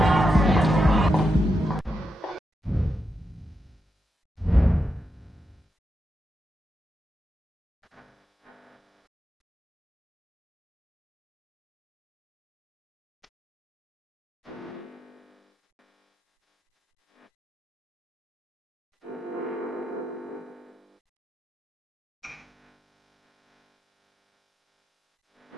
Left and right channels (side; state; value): both; normal; correlation 0.86